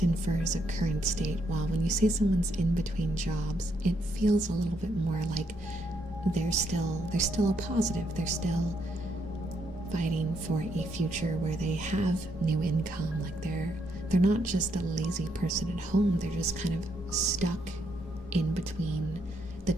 infers a current state, while when you say someone's in between jobs, it feels a little bit more like they're still a positive. They're still fighting for a future where they have new income. Like they're not just a lazy person at home. They're just kind of stuck in between the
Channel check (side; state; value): both; normal; correlation 0.75